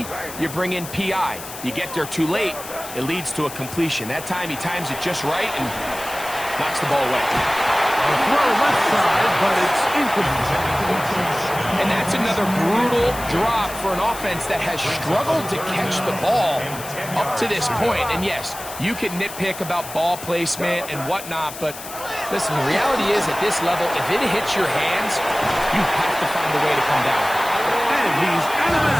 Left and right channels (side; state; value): left; noise; hiss, 12 dB below the sound